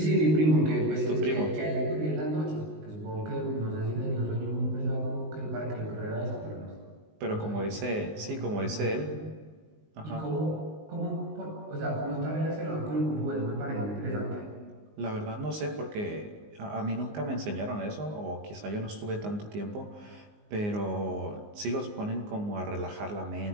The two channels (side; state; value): left; late; 19 ms